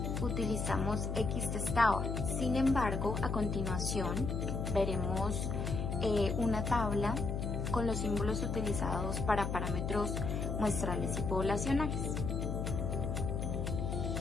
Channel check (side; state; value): left; noise; hum, 2 dB below the sound